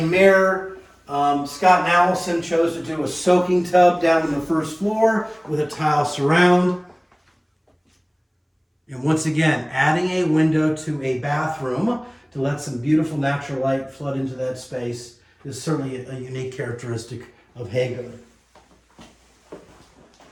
mirror. Scott and Allison chose to do a soaking tub down on the first floor with a tile surround. And once again, adding a window to a bathroom to let some beautiful natural light flood into that space is certainly a unique characteristic of Haygood.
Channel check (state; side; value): identical; both; correlation 1.00